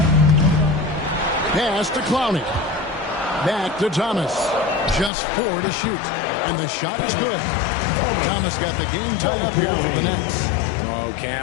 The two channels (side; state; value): right; drops out; at 5.1 s